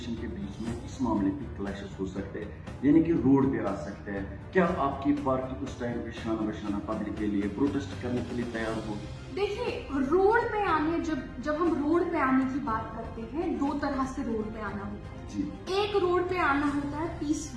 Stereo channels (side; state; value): both; identical; correlation 1.00